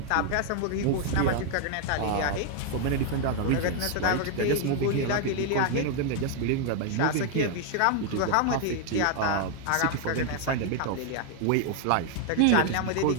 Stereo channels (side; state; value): both; different; correlation 0.00